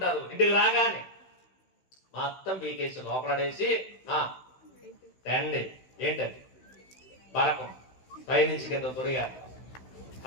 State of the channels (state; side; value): late; right; 16 ms